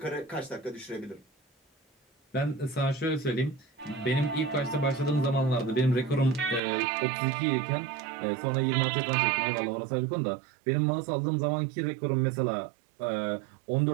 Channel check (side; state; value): left; drops out; at 6.6 s